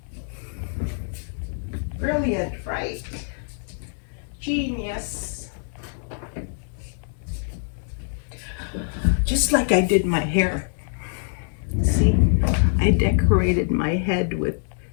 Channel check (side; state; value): right; silent; digital silence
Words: Brilliant, right? Genius. Just like I did my hair. See, I decorated my head with